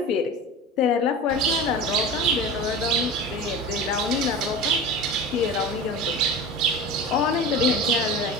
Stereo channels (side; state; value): both; normal; correlation 0.31